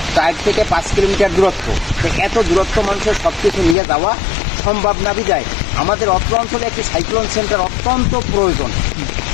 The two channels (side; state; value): right; drops out; at 3.8 s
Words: 4 থেকে 5 কিলোমিটার দূরত্ব। তো এত দূরত্ব মানুষের সব কিছু নিয়ে যাওয়া সম্ভব না বিদায় আমাদের অত্র অঞ্চলে একটি সাইক্লোন সেন্টার অত্যন্ত প্রয়োজন।